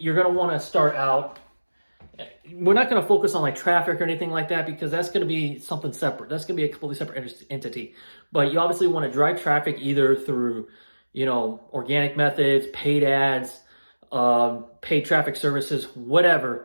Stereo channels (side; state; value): both; inverted; correlation -1.00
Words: you're going to want to start out, we're not going to focus on like traffic or anything like that, because that's going to be something separate. That's going to be a completely separate entity. But you obviously want to drive traffic either through, organic methods, paid ads, paid traffic services,